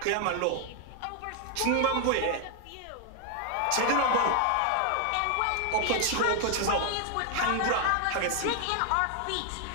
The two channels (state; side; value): different; both; correlation 0.00